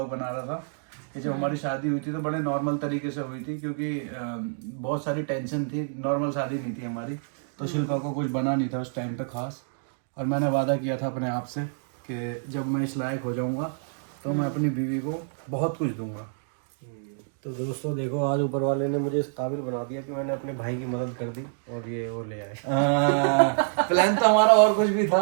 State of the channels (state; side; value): silent; left; digital silence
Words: बना रहा था कि जब हमारी शादी हुई थी तो बड़े नॉर्मल तरीके से हुई थी, क्योंकि बहुत सारी टेंशन थी। नॉर्मल शादी नहीं थी हमारी। तो शिल्पा को कुछ बना नहीं था उस टाइम पे खास। और मैंने वादा किया था अपने आप से कि जब मैं इस लायक हो जाऊंगा तो मैं अपनी बीवी को बहुत कुछ दूंगा। तो दोस्तों देखो, आज ऊपर वाले ने मुझे इस काबिल बना दिया कि मैंने अपने भाई की मदद कर दी और ये वो ले आए। प्लान तो हमारा और कुछ भी